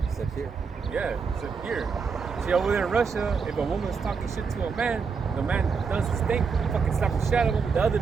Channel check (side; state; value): left; quieter; 5.5 dB